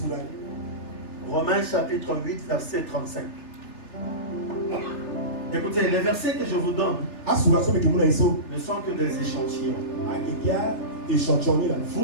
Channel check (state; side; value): late; right; 3.3 ms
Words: Romains chapitre 8, verset 35. Écoutez, les versets que je vous donne ne sont que des échantillons.